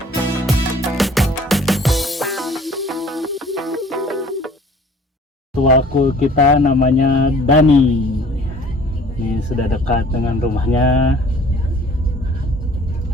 Ketua cool kita namanya Dani. Ini sudah dekat dengan rumahnya.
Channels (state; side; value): normal; both; correlation 0.52